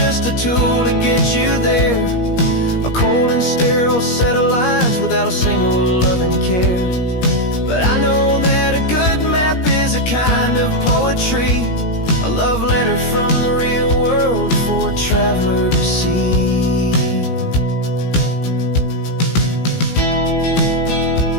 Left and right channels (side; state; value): right; late; 17 ms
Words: a tool to get you there, a cold and sterile set of lines without a single loving care. But I know that a good map is a kind of poetry, a love letter from the real world for a traveler to see.